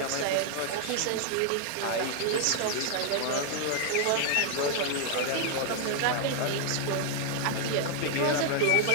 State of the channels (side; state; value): both; different; correlation -0.01